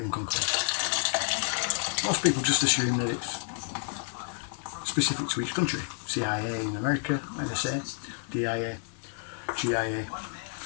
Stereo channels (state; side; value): silent; right; 58 dB below the other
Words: come close. Most people just assume that it's specific to each country. CIA in America, NSA, DIA, GIA,